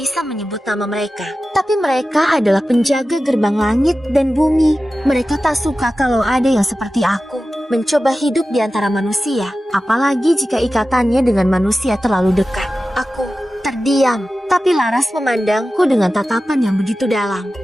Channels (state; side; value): normal; both; correlation 0.94